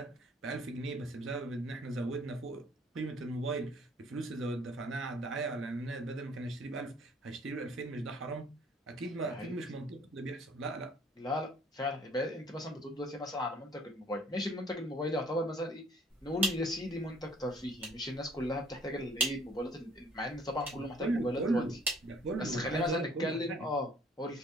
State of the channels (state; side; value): normal; both; correlation 0.57